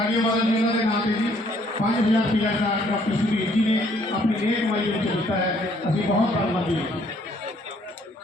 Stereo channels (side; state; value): both; normal; correlation 0.64